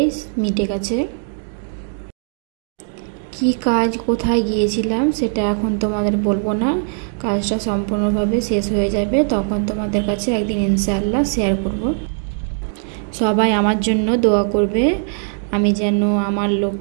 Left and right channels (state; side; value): silent; left; 66 dB below the other